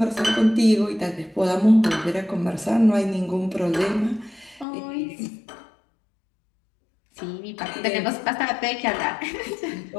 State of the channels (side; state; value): right; drops out; at 4.7 s